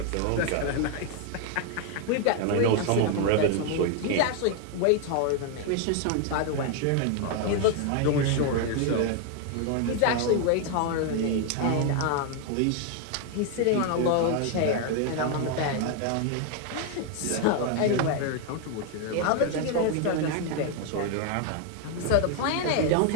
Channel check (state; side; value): different; both; correlation 0.00